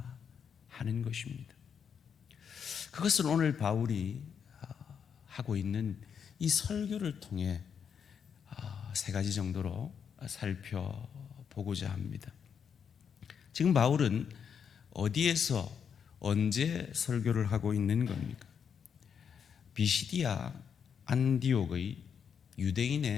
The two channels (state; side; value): quieter; right; 7.2 dB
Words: 하는 것입니다. 그것을 오늘 바울이 하고 있는 이 설교를 통해 세 가지 정도로 살펴보고자 합니다. 지금 바울은 어디에서 언제 설교를 하고 있는 겁니까? 비시디아 안디옥의